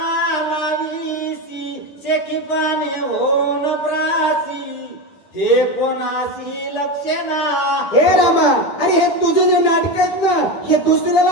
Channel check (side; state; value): right; late; 10 ms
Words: लावीसी शेकी पाने होन प्रासी हे कोणासी लक्षेना. हे रामा अरे हे तुझे जे नाटक आहेत ना हे